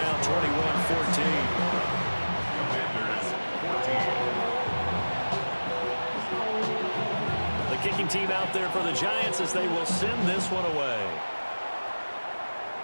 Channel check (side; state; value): both; inverted; correlation -1.00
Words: 21-14. Commanders 14. The kicking team out there for the Giants as they will send this one away.